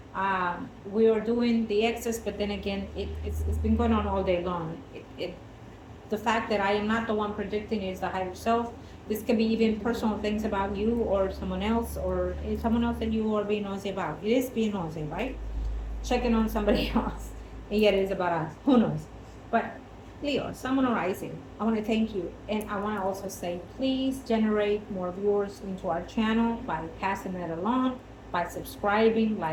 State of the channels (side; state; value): both; identical; correlation 1.00